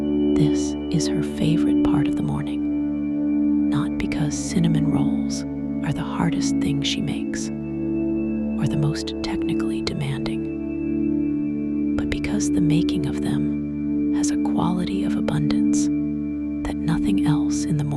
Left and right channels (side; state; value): both; identical; correlation 1.00